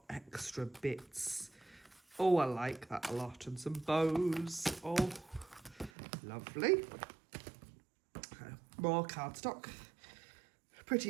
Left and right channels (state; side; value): drops out; left; at 5.9 s